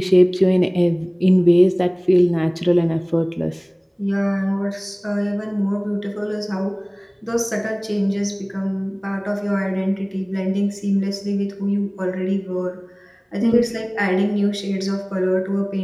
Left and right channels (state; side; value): identical; both; correlation 1.00